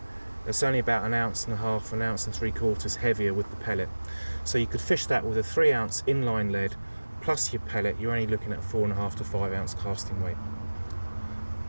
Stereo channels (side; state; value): both; inverted; correlation -1.00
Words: it's only about 1.5 ounces, 1.75 ounces heavier with the pellet. So you could fish that with a 3 ounce inline lead plus your pellet. You're only looking at 4.5 to 5 ounce casting weight.